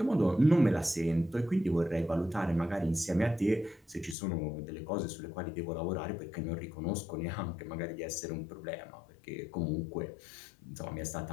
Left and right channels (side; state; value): right; drops out; at 4.2 s